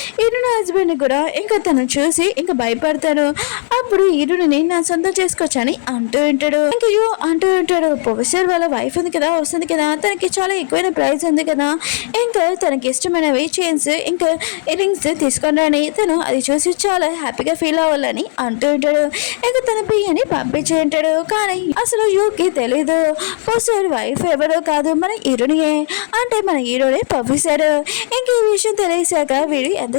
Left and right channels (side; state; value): right; silent; digital silence